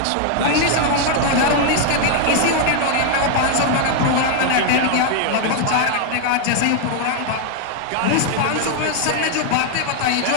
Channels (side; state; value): both; different; correlation 0.00